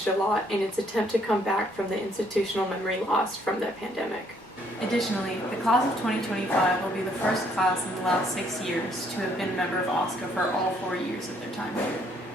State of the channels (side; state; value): both; normal; correlation 0.67